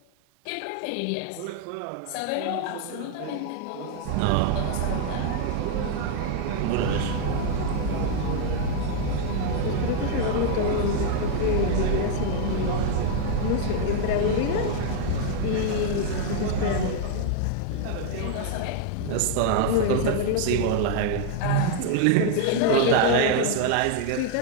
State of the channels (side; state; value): both; different; correlation 0.00